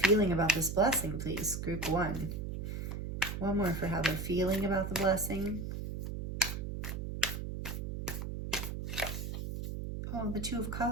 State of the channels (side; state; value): right; noise; hum, 4 dB below the sound